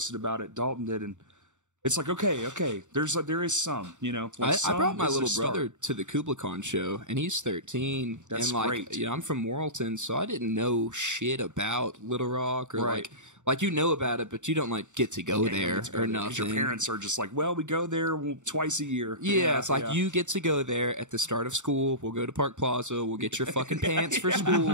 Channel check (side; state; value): left; late; 0.85 ms